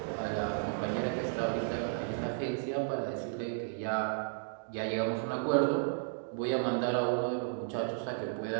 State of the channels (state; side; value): silent; left; digital silence